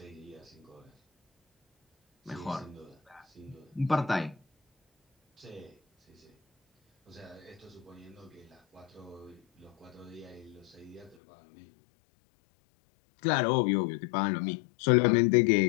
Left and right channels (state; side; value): drops out; right; at 11.2 s